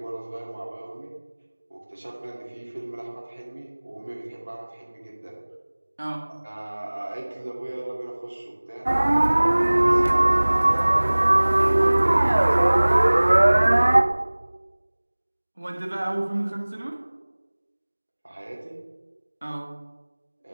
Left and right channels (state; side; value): inverted; both; correlation -1.00